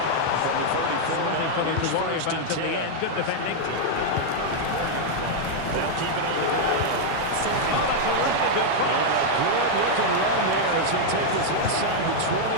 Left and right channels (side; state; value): both; different; correlation -0.01